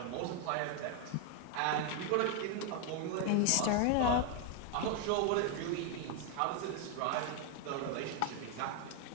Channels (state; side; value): different; both; correlation 0.01